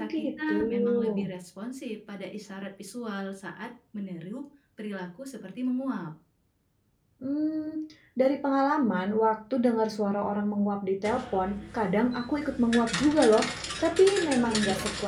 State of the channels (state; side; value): identical; both; correlation 1.00